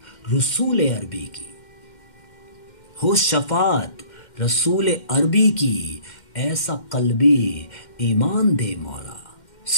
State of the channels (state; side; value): late; right; 2.1 ms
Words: रसूल अरबी की, हो शफात रसूल अरबी की, ऐसा कल्बी ईमान दे मौला।